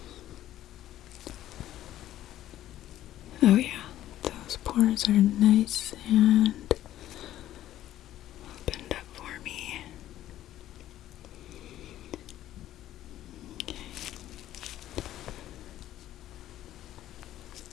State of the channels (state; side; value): quieter; right; 13.1 dB